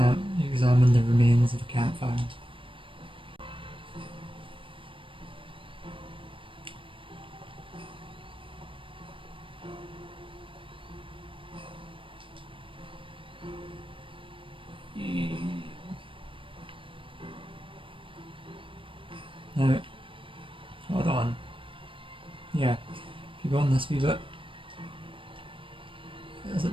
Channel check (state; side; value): late; left; 0.25 ms